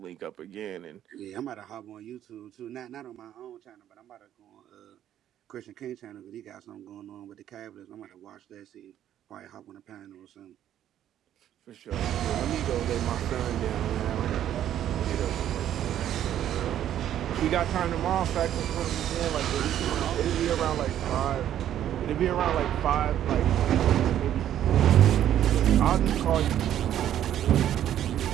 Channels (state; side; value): quieter; left; 11.1 dB